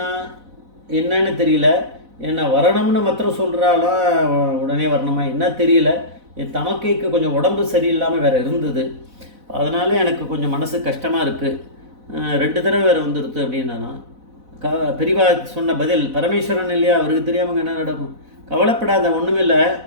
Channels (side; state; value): left; late; 4.0 ms